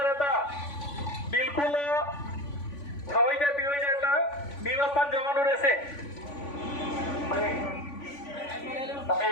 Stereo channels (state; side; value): late; right; 3.5 ms